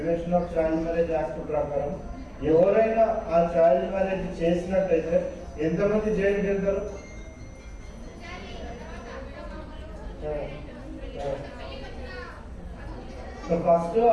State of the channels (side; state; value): both; identical; correlation 1.00